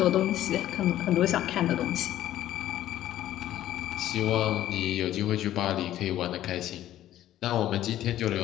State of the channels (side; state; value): right; quieter; 13.0 dB